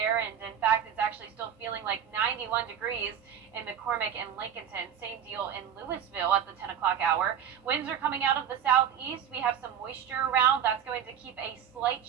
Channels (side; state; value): left; quieter; 8.9 dB